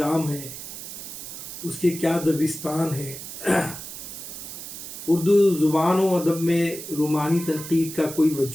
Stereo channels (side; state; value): right; noise; hiss, 10 dB below the sound